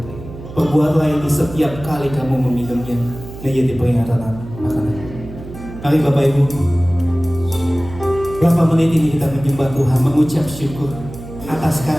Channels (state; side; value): noise; right; hum, 13 dB below the sound